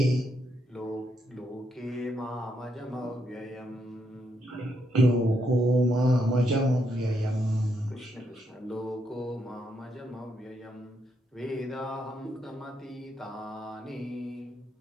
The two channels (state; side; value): normal; both; correlation 0.78